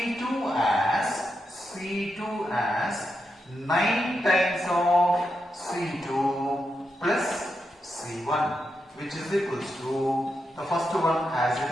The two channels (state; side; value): normal; both; correlation 0.85